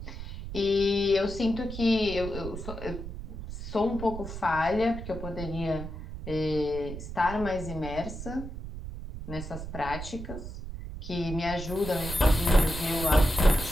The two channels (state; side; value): noise; right; rumble, 9 dB below the sound